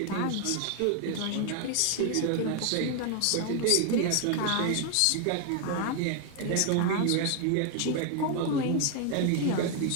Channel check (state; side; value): different; both; correlation 0.01